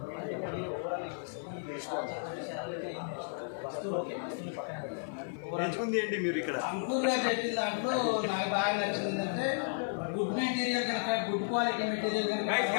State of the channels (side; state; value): right; silent; 55 dB below the other